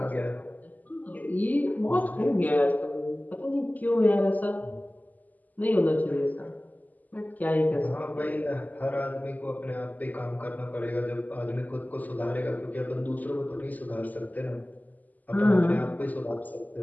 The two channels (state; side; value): late; right; 0.081 ms